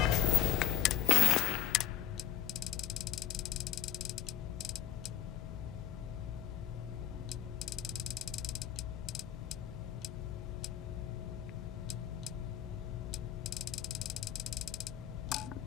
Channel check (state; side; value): quieter; right; 11.5 dB